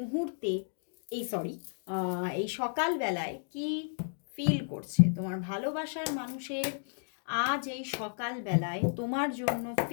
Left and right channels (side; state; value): right; silent; digital silence